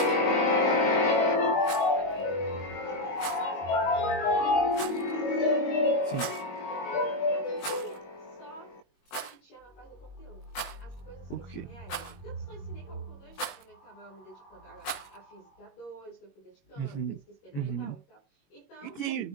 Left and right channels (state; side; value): late; right; 21 ms